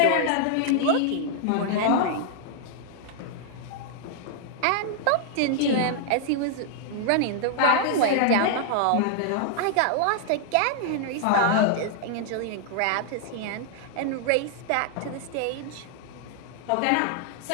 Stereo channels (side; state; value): both; different; correlation 0.00